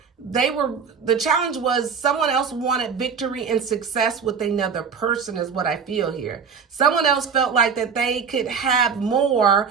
The challenge was someone else wanted victory and success with another person is what I feel here. Someone else felt like that they could have more,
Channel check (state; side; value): quieter; left; 6.3 dB